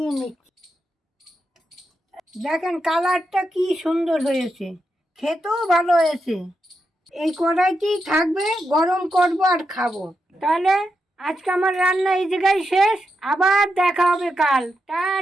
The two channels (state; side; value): normal; both; correlation 0.85